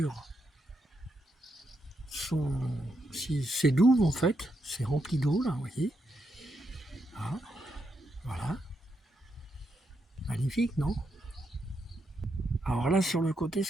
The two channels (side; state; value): both; normal; correlation 0.81